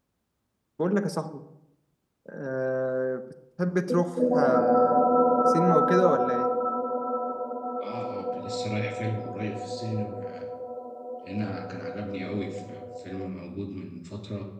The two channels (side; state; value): both; identical; correlation 1.00